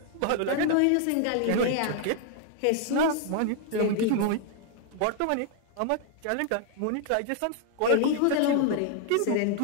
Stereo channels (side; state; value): both; different; correlation 0.00